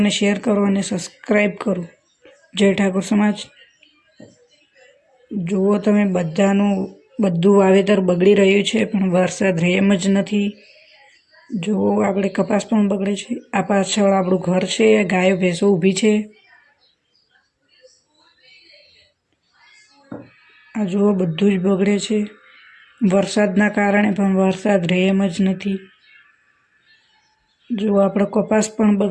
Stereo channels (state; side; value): identical; both; correlation 1.00